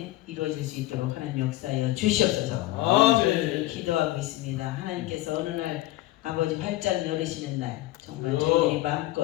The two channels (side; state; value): right; quieter; 16.9 dB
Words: 이루어질 수 있도록 하나님 역사하여 주시옵소서. 저희들은 기도하고 있습니다. 하나님께서 어느 날 아버지 활짝 열으시는 날 정말 저희들이